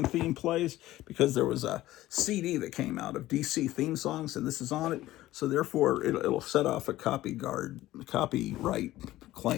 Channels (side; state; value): right; quieter; 15.7 dB